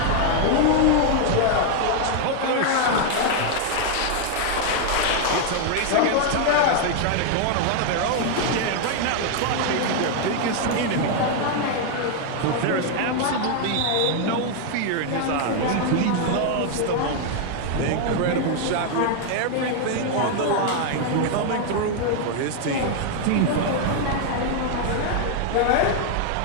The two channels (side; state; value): both; different; correlation 0.00